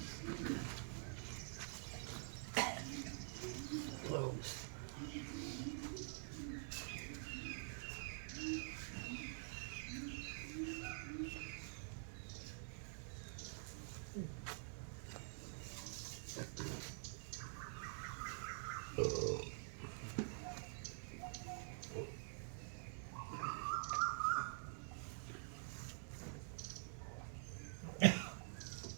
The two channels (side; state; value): left; silent; digital silence